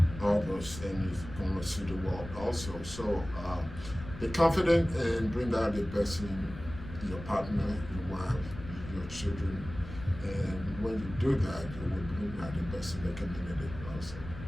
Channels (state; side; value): noise; left; rumble, 12 dB below the sound